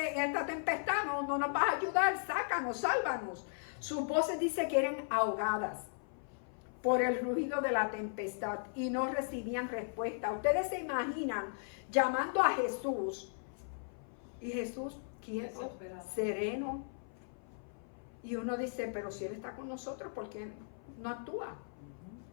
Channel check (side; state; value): right; silent; 53 dB below the other